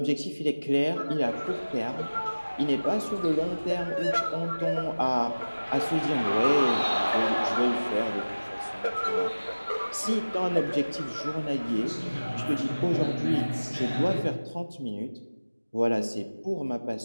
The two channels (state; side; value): inverted; both; correlation -1.00